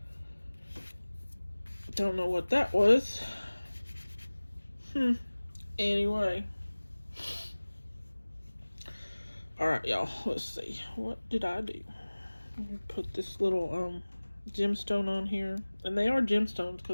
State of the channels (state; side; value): inverted; both; correlation -1.00